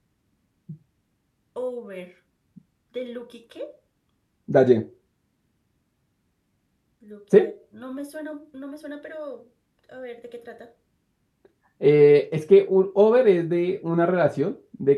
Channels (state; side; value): identical; both; correlation 1.00